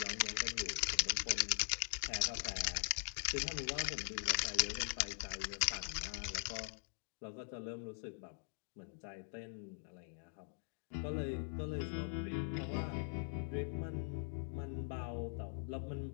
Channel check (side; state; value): right; silent; digital silence